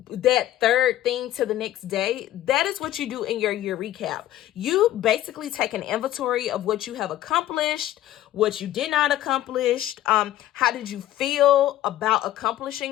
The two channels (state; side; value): quieter; right; 13.4 dB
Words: that third thing to the next day. That is what you do in your year recap. You basically take an inventory of what you have accomplished, what you did not accomplish, how did you feel about